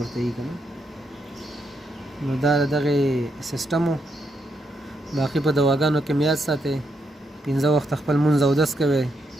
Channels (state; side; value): normal; both; correlation 0.80